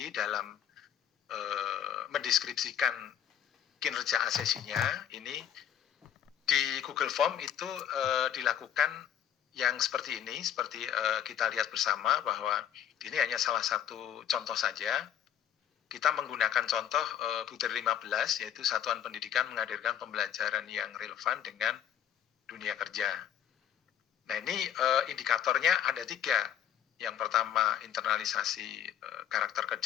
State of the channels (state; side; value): quieter; right; 9.8 dB